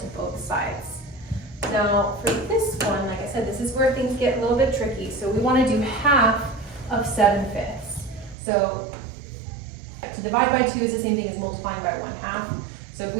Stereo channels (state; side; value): drops out; left; at 8.3 s